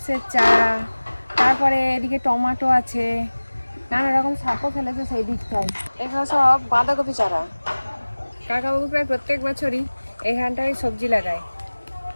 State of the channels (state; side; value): inverted; both; correlation -1.00